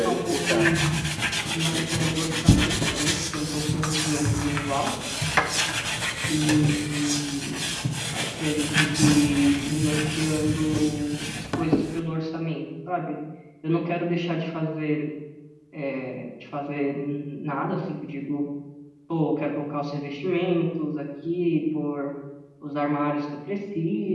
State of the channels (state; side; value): identical; both; correlation 1.00